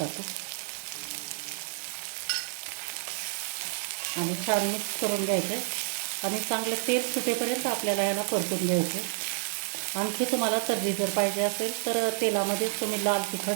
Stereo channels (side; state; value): left; silent; 58 dB below the other